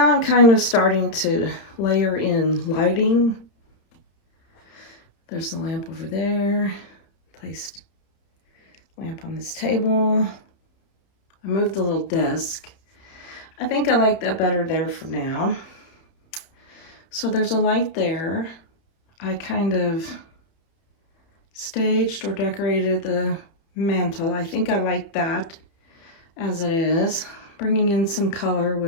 I'm kind of starting to layer in lighting. There's the lamp over there. Placed lamp on this table. I moved the little desk. I think I like that better there for now. So there's a light there. I kind of staged or decorated the mantle. I think I like that as it is. Bringing in some color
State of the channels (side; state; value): right; late; 31 ms